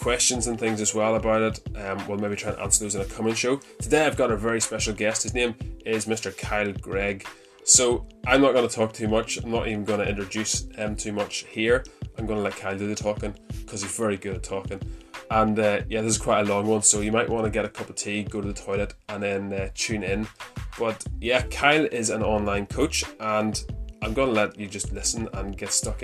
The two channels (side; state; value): both; identical; correlation 1.00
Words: and things as well about it. We'll maybe try and answer those in a coming show. Today I've got a very special guest. His name is Mr. Kyle Gregg. So I'm not going to talk too much. I'm not even going to introduce him too much here. I'm going to let Kyle do the talking because he's very good at talking. And this is quite a long one, so you might want to get a cup of tea, go to the toilet, and then tune in. But yeah, Kyle is an online coach, and I'm going to let you just listen and get stuck